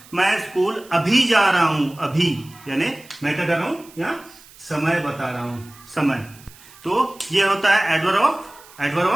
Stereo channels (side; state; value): right; noise; hiss, 23 dB below the sound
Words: मैं स्कूल अभी जा रहा हूं, अभी यानी मैं क्या कर रहा हूं, या समय बता रहा हूं, समय। तो ये होता है एडवर्ब